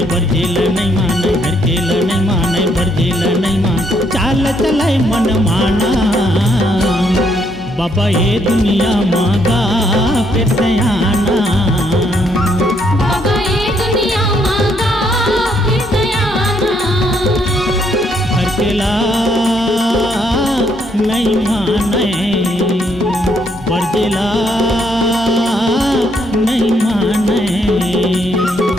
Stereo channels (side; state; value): both; normal; correlation 0.72